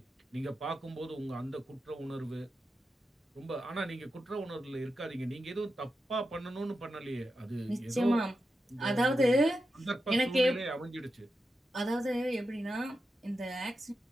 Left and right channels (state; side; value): normal; both; correlation 0.89